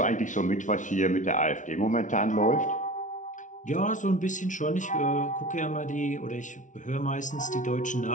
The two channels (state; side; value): late; right; 0.37 ms